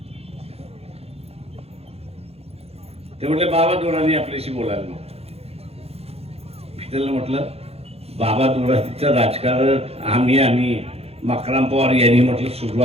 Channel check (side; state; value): left; late; 0.29 ms